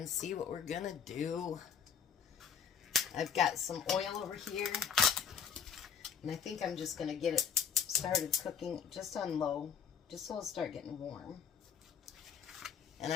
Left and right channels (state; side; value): quieter; right; 7.2 dB